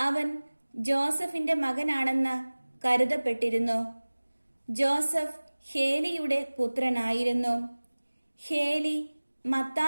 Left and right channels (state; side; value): inverted; both; correlation -1.00